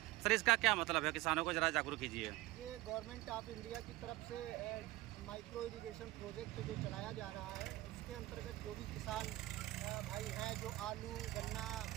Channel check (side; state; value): left; quieter; 18.4 dB